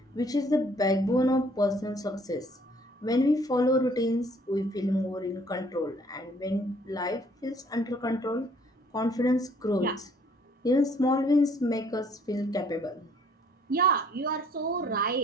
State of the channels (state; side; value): normal; both; correlation 0.60